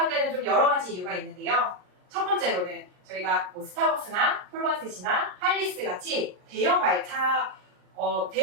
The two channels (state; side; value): late; left; 39 ms